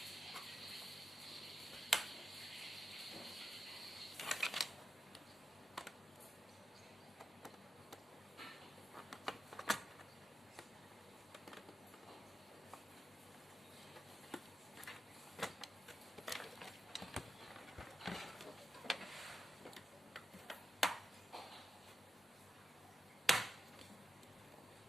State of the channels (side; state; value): both; normal; correlation 0.89